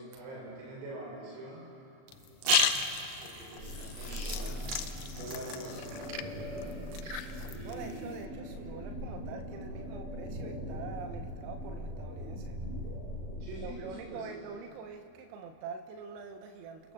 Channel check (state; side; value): late; left; 38 ms